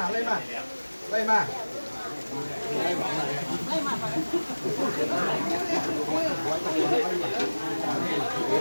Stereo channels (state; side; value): inverted; both; correlation -1.00